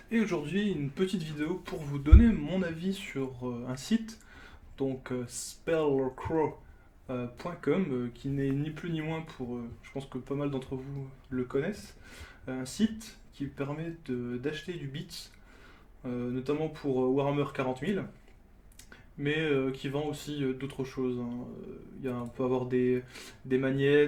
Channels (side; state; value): both; identical; correlation 1.00